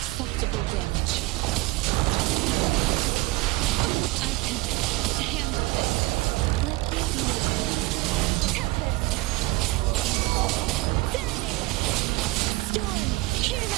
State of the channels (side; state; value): left; quieter; 21.3 dB